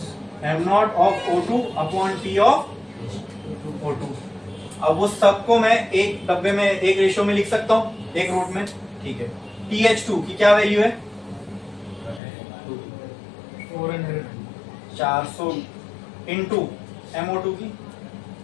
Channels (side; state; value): right; drops out; at 12.2 s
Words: M not of O2 upon T of O2। अब वो सबको मैं एक डब्बे में एक रेशियो में लिख सकता हूं, एक रूट में, ठीक है। PH2 की क्या वैल्यू है? 400 इंटू MO2 की